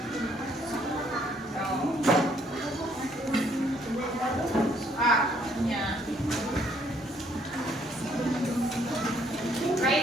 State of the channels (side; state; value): both; normal; correlation 0.66